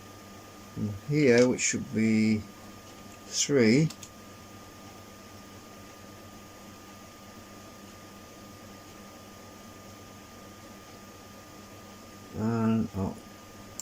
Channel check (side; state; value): both; identical; correlation 1.00